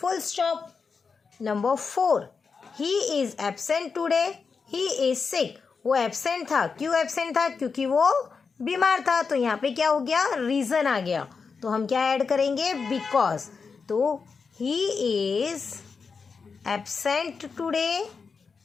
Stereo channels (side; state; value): right; quieter; 5.2 dB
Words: stop. Number 4. He is absent today. He is sick. वो एबसेंट था. क्यों एबसेंट था? क्योंकि वो बीमार था. तो यहाँ पे क्या हो गया? रीज़न आ गया. तो हम क्या ऐड करेंगे? बिकॉज. तो he is absent today